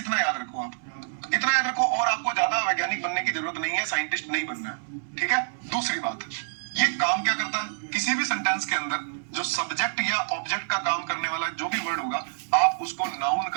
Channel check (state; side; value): silent; left; 60 dB below the other